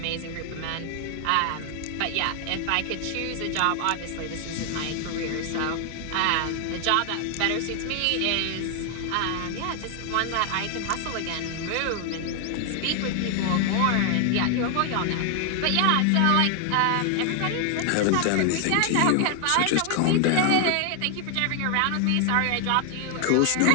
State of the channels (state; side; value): different; both; correlation 0.00